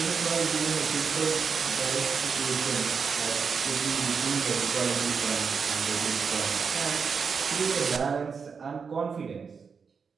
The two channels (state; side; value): quieter; left; 5.8 dB